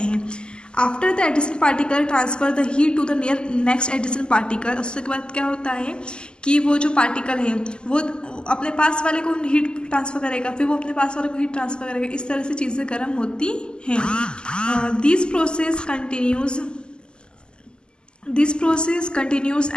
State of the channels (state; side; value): late; right; 0.048 ms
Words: After the adjacent particle transfer the heat to the near next adjacent particle. उसके बाद क्या होता है कि वो जो पार्टिकल है वो अपने पास वाले को हीट ट्रांसफ़र करेगा, फिर वो अपने पास वाले को हीट ट्रांसफ़र करेगा। इस तरह से चीज़ें गर्म होती हैं। This process continues